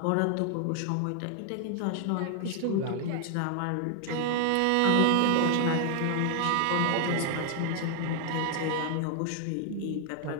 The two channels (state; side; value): different; both; correlation 0.00